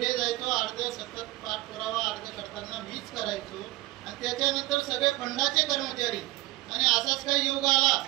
जायचो. अर्ध सतत पाठपुरावा अर्ज करताना मीच करायचो. आणि त्याच्यानंतर सगळे फंडाचे कर्मचारी आणि असाच काही योग आला.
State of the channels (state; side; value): quieter; left; 19.7 dB